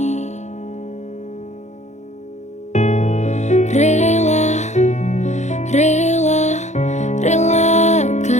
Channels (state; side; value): late; right; 0.33 ms